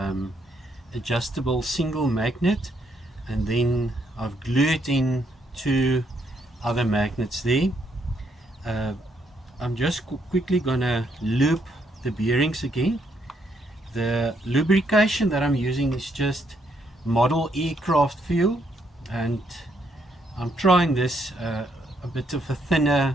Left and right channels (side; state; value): both; normal; correlation 0.73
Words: adjustable single magnet, and then I've glued in two other magnets there. I'm just quickly gonna loop the bearings again. The lubrication that I'm using is just model aircraft fuel, and I'm trying this a bit of a